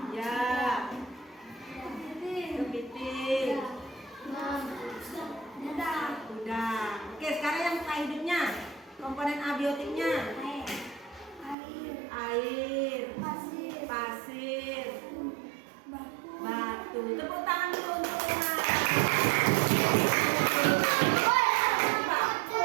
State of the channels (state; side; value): drops out; left; at 11.6 s